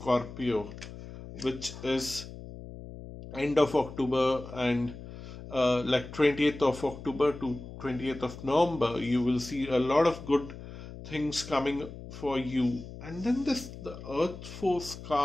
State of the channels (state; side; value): noise; left; hum, 13 dB below the sound